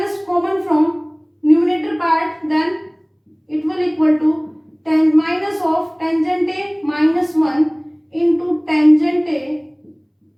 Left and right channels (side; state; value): both; identical; correlation 1.00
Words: common from numerator part, then it will equal to minus of tangent A minus 1 into tangent A